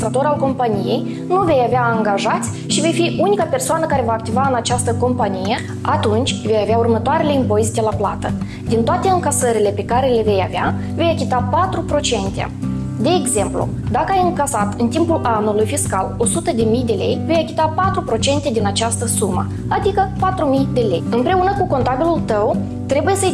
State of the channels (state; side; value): identical; both; correlation 1.00